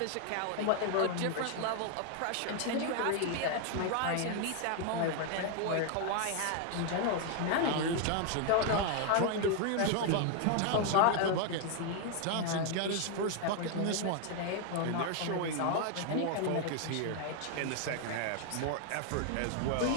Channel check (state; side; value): different; both; correlation 0.01